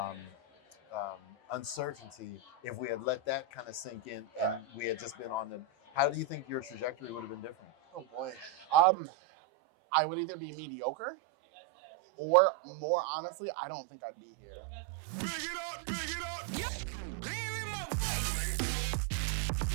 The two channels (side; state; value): left; drops out; at 8.8 s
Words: um, uncertainty, if we had let that kind of sink in and we had just been on the, how do you think your trajectory would have been different? Oh boy. I would either be mediocre or, more honestly, I don't think I'd be here. Big it up, big it up. Yeah. Hear in my voice.